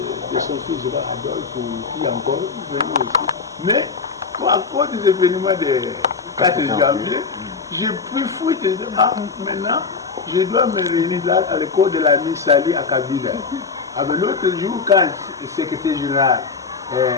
de son fils, je vois Adolphe, qui est encore venu aussi. Mais à cause des événements de 4 janvier, j'ai pu fouiller. Maintenant, je dois me réunir là à l'école de la Miss Sali à Kabila. L'autre jour, quand le secrétaire général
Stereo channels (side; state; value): right; quieter; 5.0 dB